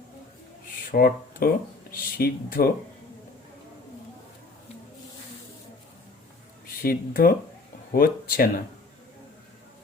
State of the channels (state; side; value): quieter; right; 3.6 dB